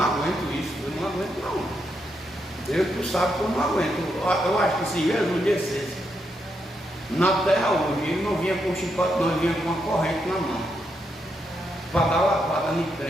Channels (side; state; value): both; normal; correlation 0.81